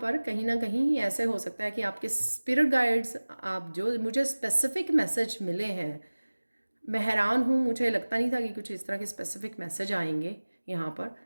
कहीं ना कहीं ऐसे हो सकता है कि आपके स्पिरिट गाइड्स, आप जो मुझे स्पेसिफिक मैसेज मिले हैं, मैं हैरान हूँ, मुझे लगता नहीं था कि कुछ इस तरह के स्पेसिफिक मैसेज आएंगे यहाँ पर।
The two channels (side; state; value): both; inverted; correlation -1.00